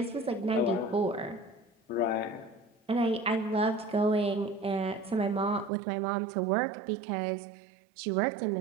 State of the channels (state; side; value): drops out; left; at 5.7 s